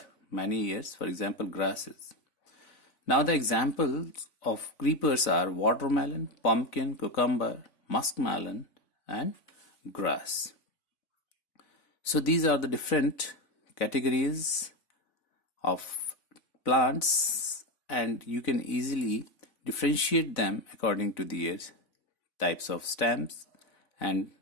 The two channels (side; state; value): right; late; 4.0 ms